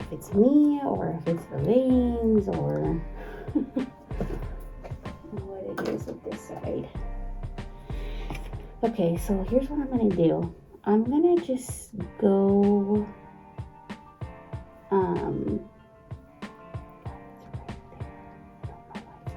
it's me or if it's the veins or what it is with this side. Okay, so here's what I'm gonna do. I'm gonna just go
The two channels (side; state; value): both; identical; correlation 1.00